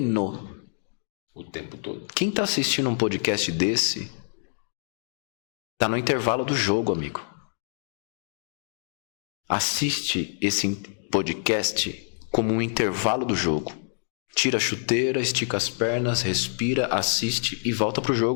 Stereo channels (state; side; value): silent; right; digital silence